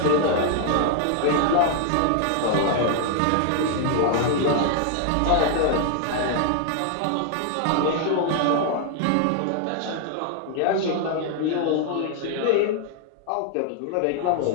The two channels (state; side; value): different; both; correlation 0.00